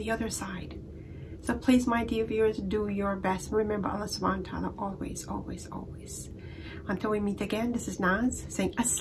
other side. So please, my dear viewers, do your best. Remember Allah subhanahu wa ta'ala always, always, always. Until we meet again, this is Naz saying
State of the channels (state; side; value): identical; both; correlation 1.00